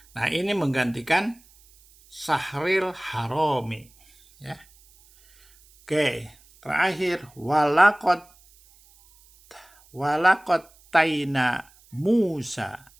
Nah, ini menggantikan sahril harami ya. Oke, terakhir walakot taina Musa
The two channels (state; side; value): noise; right; hiss, 29 dB below the sound